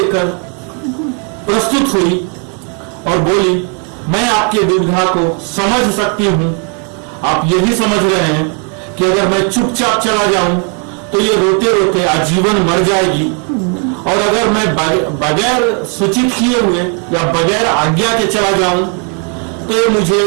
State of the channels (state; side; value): quieter; left; 39.8 dB